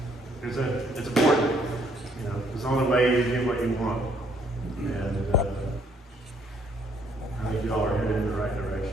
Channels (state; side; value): normal; both; correlation 0.66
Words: It's important, it's the only way you get what you want. And I think y'all are headed in the right